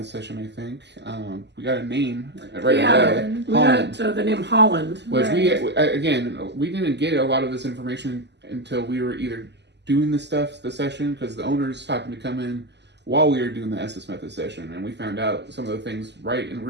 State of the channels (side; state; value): left; late; 0.50 ms